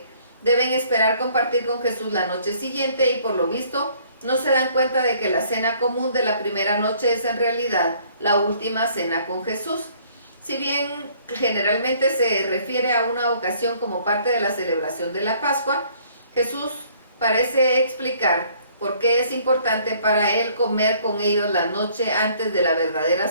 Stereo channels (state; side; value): inverted; both; correlation -0.60